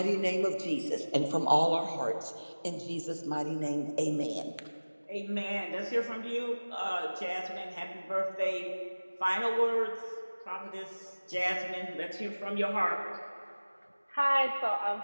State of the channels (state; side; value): inverted; both; correlation -1.00